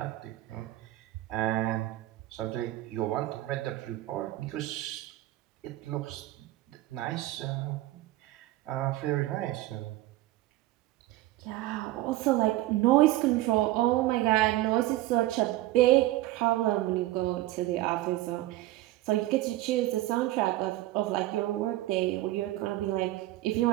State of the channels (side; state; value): left; quieter; 16.7 dB